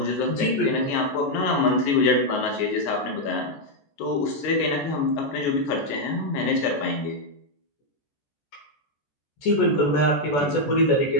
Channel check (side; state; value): right; late; 14 ms